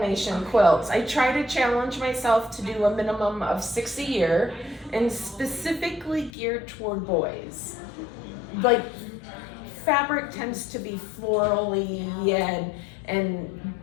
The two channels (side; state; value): right; drops out; at 6.3 s